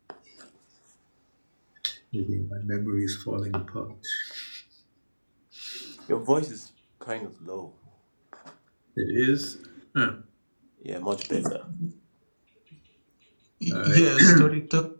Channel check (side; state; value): both; inverted; correlation -1.00